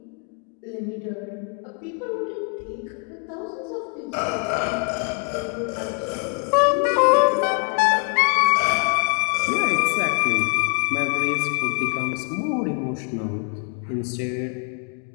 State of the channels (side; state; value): right; quieter; 33.9 dB